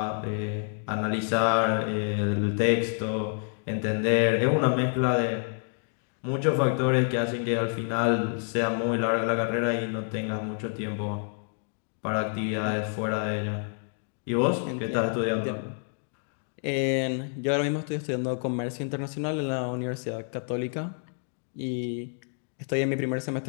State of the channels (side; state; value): right; silent; 59 dB below the other